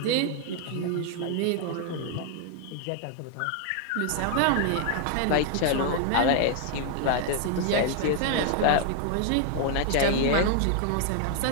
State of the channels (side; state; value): both; different; correlation 0.00